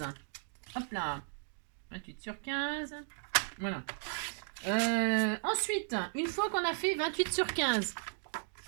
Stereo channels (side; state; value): left; silent; digital silence